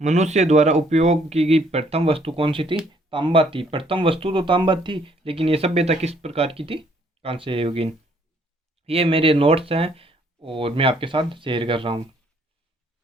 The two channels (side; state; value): both; normal; correlation 0.65